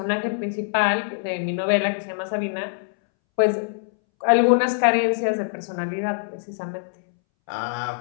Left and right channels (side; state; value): right; silent; 63 dB below the other